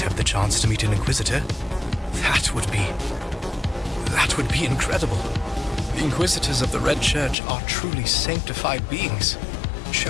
have the chance to meet an Inquisitor? That would be incredible. The Inquisitors of the Red Church are truly sanctified beings,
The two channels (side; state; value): right; drops out; at 7.4 s